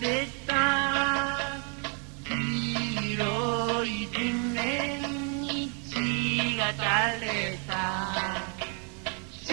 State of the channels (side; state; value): left; quieter; 38.4 dB